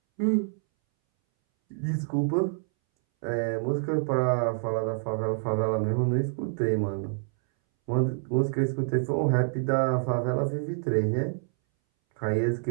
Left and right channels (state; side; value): silent; left; 60 dB below the other